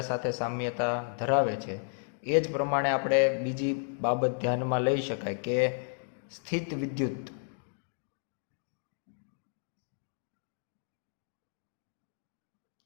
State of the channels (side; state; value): right; silent; digital silence